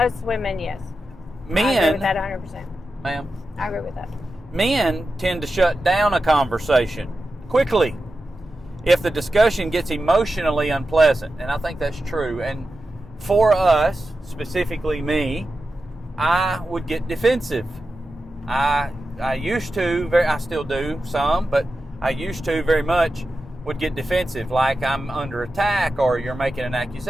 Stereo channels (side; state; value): both; normal; correlation 0.91